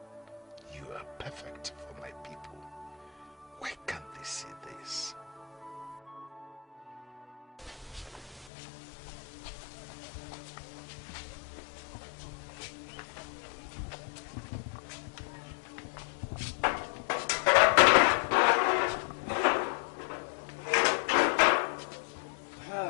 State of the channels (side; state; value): right; drops out; at 8.5 s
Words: You are perfect for my people. Why can't they see this?